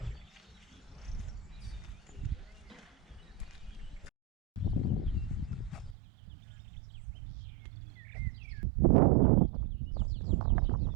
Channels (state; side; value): drops out; left; at 6.0 s